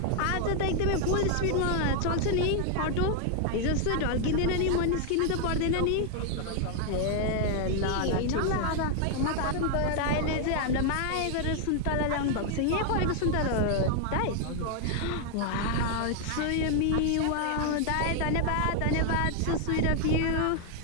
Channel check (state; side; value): different; both; correlation 0.00